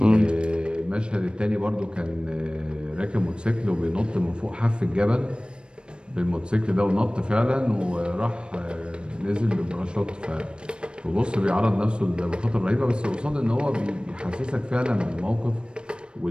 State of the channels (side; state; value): left; late; 0.055 ms